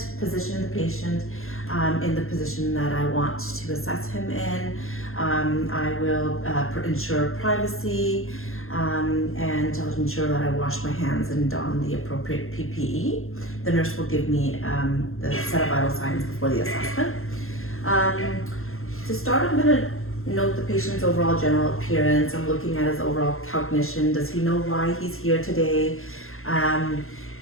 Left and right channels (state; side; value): late; right; 0.61 ms